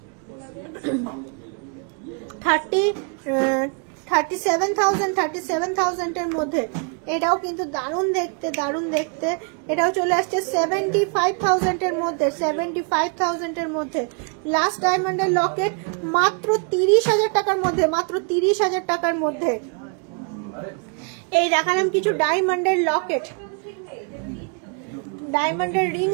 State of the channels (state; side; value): quieter; left; 38.7 dB